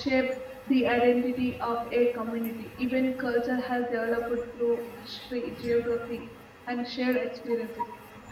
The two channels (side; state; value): both; identical; correlation 1.00